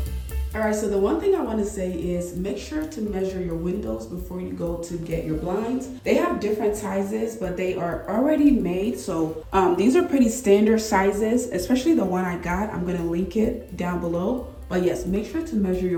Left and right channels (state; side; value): identical; both; correlation 1.00